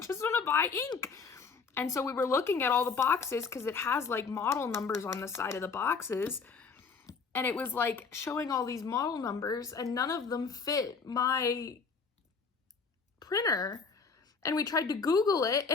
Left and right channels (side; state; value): right; quieter; 5.1 dB